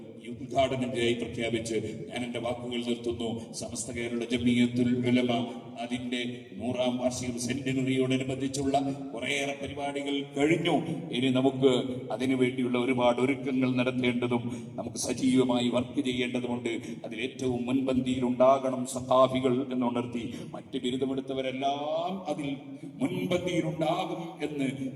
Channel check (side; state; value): both; identical; correlation 1.00